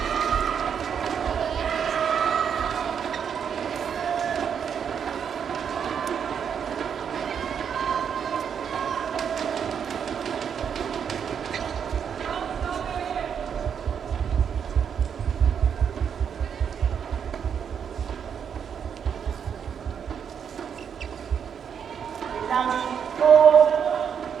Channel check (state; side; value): quieter; left; 7.6 dB